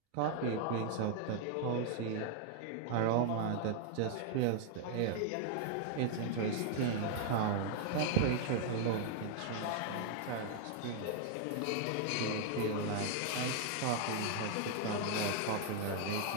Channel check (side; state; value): both; different; correlation 0.00